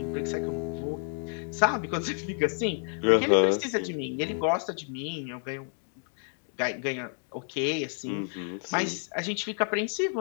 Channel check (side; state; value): right; silent; 58 dB below the other